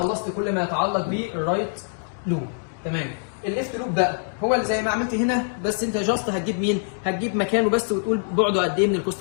كل ما يتعلق بالرايت لوب. تمام؟ الليفت لوب بقى هو اللي زي ما عملت هنا، بس انت جاست هتجيب مين؟ هتجيب مكانه بس وتقول بعده قد ايه من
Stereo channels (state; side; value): silent; right; digital silence